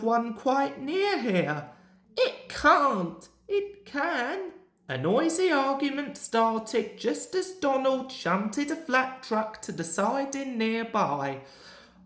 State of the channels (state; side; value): identical; both; correlation 1.00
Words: one quite near here. It can't. It can. A noisy argument started just as Donald shunted a flat truck to the siding nearby.